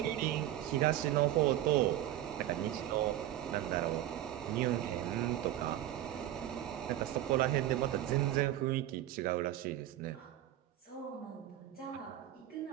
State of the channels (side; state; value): left; quieter; 13.2 dB